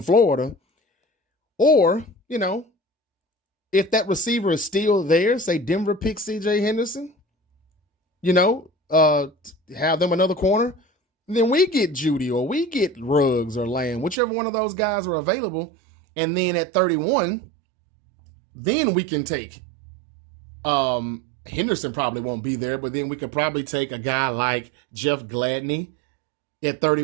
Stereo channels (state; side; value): drops out; left; at 14.2 s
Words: Florida. Or, if that receiver is still there, say Denver picks C.J. Henderson, have them another corner, then we get Judy or we get Ruggs or Lamb, whichever one of those guys are available. And then at 31, then we can take Henderson probably won't be there, but then we could probably take a guy like Jeff Gladney at